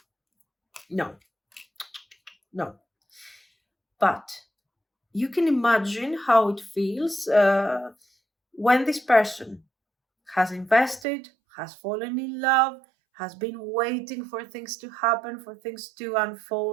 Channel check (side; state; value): left; drops out; at 11.1 s